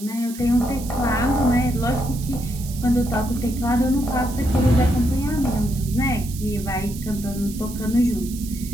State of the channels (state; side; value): noise; right; hiss, 14 dB below the sound